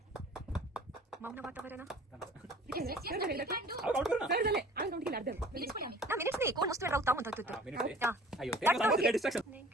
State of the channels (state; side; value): normal; both; correlation 0.48